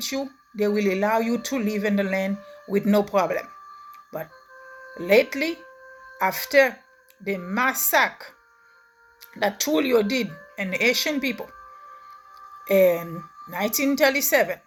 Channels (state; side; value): identical; both; correlation 1.00